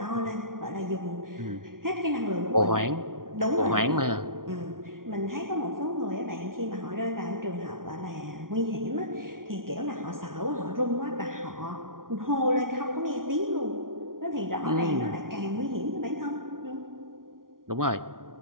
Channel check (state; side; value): late; left; 0.91 ms